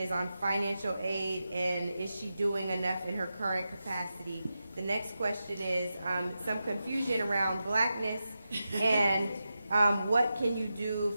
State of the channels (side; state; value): both; inverted; correlation -0.90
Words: on financial aid, and is she doing enough in her current capacity? The next question is some confusion around blackness and what can you do